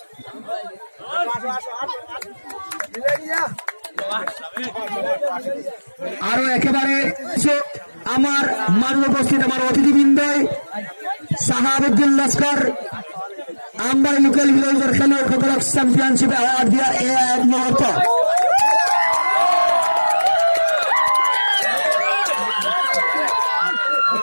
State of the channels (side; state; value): both; inverted; correlation -1.00